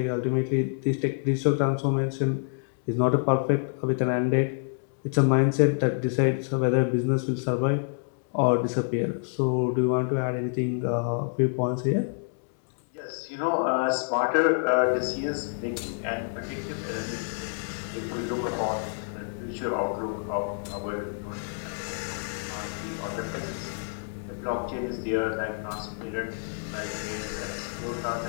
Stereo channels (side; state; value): right; silent; digital silence